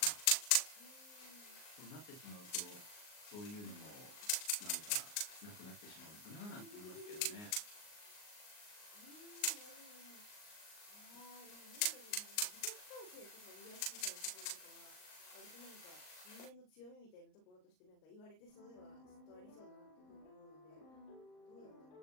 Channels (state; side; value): late; right; 39 ms